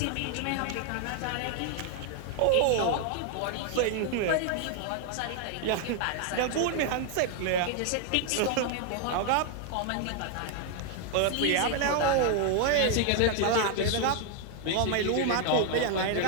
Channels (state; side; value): different; both; correlation 0.00